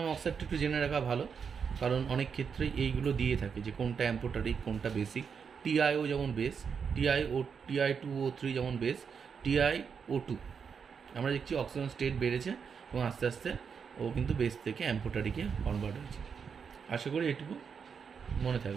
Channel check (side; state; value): left; quieter; 6.4 dB